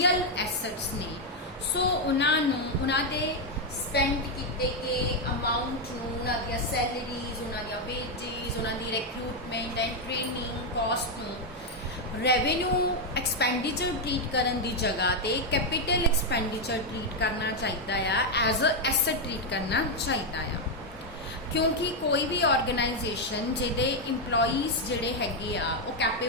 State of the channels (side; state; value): both; normal; correlation 0.03